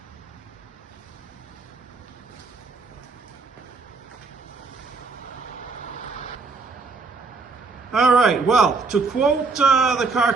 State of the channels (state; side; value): quieter; left; 4.2 dB